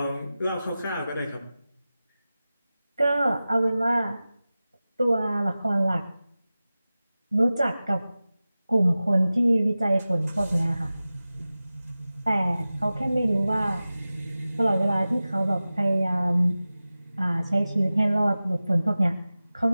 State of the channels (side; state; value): both; inverted; correlation -0.96